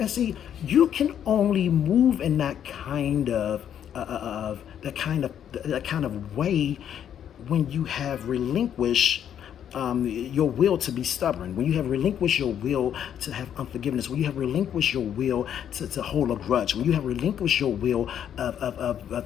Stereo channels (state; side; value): quieter; right; 9.5 dB